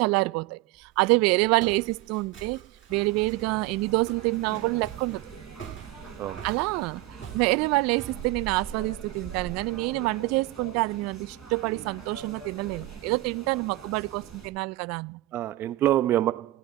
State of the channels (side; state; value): left; quieter; 18.1 dB